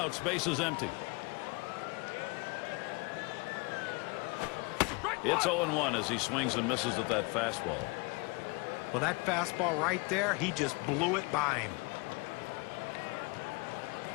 bases empty. It's 0-1 as he swings and misses at that fastball. Well, that fastball right there, he just blew it by him.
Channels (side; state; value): right; quieter; 28.6 dB